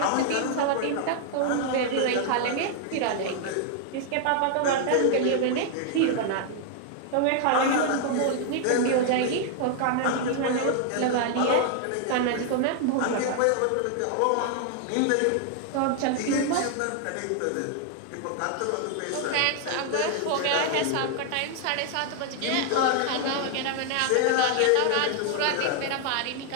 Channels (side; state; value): both; different; correlation 0.00